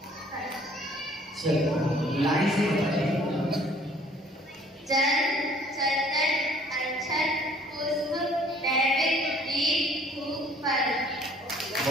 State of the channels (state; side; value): normal; both; correlation 0.56